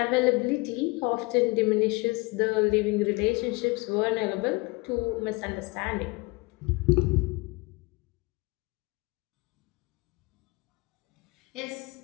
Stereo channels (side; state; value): right; quieter; 25.6 dB